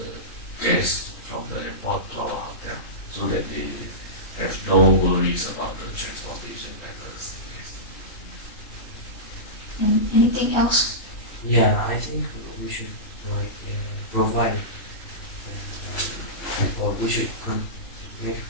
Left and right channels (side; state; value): right; late; 3.1 ms